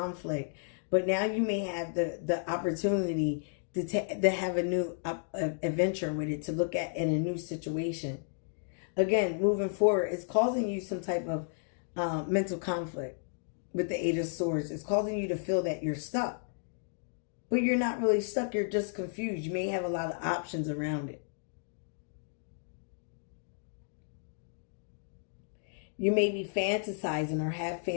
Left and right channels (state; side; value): silent; right; digital silence